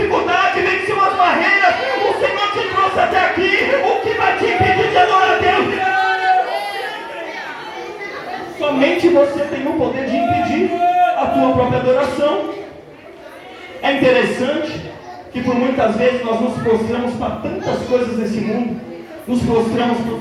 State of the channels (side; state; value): both; identical; correlation 1.00